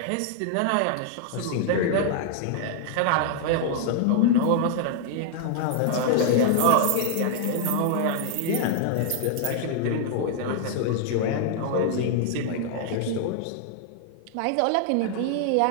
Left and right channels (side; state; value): both; different; correlation 0.00